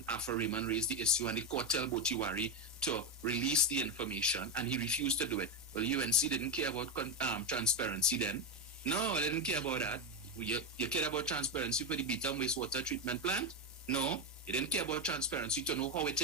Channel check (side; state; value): both; normal; correlation 0.09